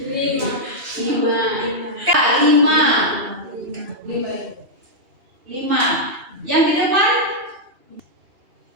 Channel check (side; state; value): left; late; 2.8 ms